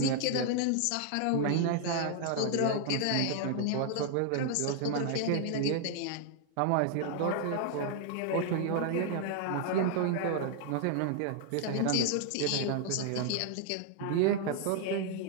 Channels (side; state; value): both; different; correlation 0.00